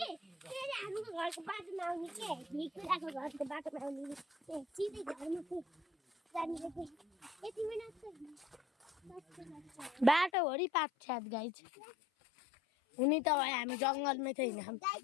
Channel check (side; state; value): right; drops out; at 10.3 s